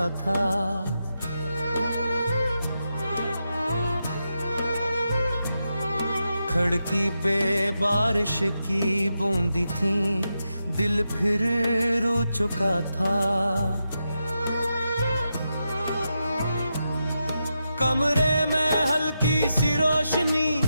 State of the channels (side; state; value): both; inverted; correlation -0.87